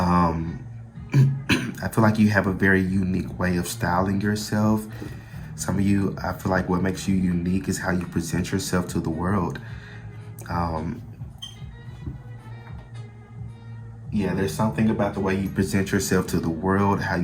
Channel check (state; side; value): identical; both; correlation 1.00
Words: feel like you have a very unique way of styling yourself. Some of you, I feel like what makes you unique is how you present yourself to the world. There's something about the way you present yourself to the world, how